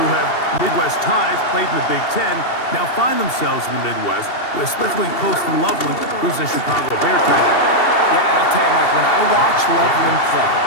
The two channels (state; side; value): late; right; 2.7 ms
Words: have Midwest ties, played in the Big Ten, now find themselves in the Midwest, especially Colston Loveland, who's a Chicago Bear tight end. Yeah, and I'll tell you, Mike, when I watch Loveland play,